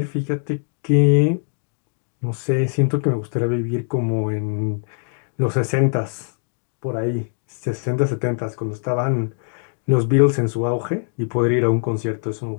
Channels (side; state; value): right; silent; digital silence